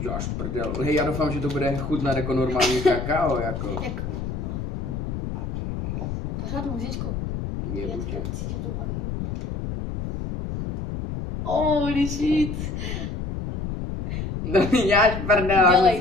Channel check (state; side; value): noise; left; rumble, 4 dB below the sound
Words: prdel. Hej, já doufám, že to bude chutnat jako normální kakao, jako. No. Pořádnou říčku. Je buďe. Cítím to baví. Holy shit. No mi děláš prdel.